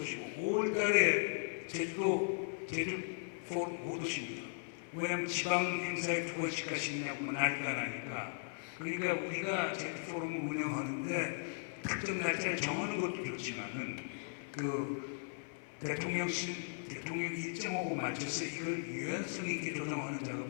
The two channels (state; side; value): silent; right; 53 dB below the other